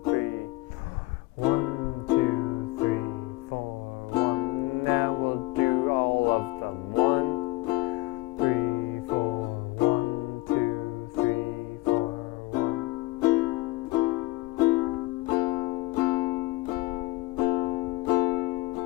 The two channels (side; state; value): right; quieter; 21.0 dB